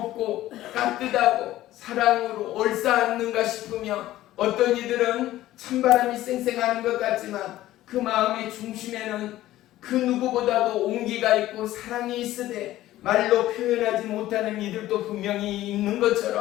따뜻하고 사랑으로 얼싸안는가 싶으며 어떤 이들은 찬바람이 쌩쌩하는 것 같지만 그 마음의 중심에는 그 누구보다도 온기가 있고 사랑이 있으되 말로 표현하지 못하는 이들도 분명히 있는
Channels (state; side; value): quieter; right; 14.9 dB